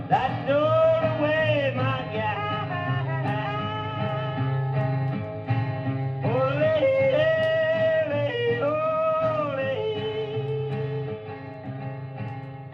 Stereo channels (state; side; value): identical; both; correlation 1.00